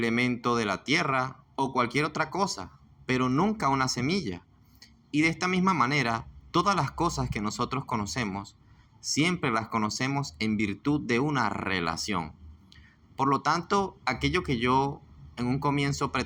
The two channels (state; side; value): identical; both; correlation 1.00